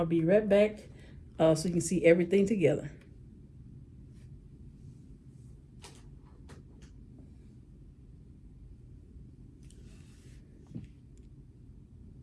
be right back so you can see everything together.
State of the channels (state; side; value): identical; both; correlation 1.00